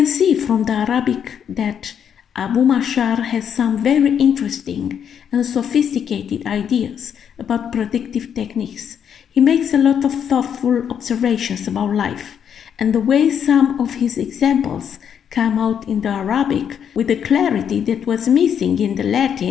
see from the Arabic that Abu Mashar has some very interesting and sophisticated ideas about predictive techniques. He makes a lot of thoughtful observations about life, and the way some of his examples come out in the Arabic with the clarity that was missing in the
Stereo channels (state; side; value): quieter; right; 8.3 dB